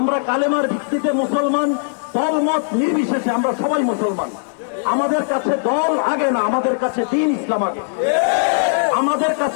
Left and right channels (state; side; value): silent; right; digital silence